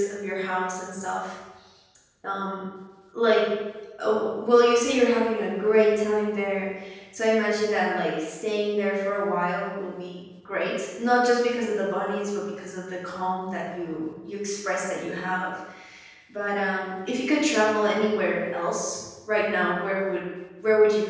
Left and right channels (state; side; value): identical; both; correlation 1.00